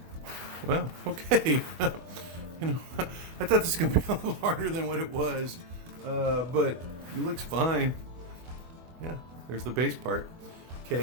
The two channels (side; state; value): left; late; 24 ms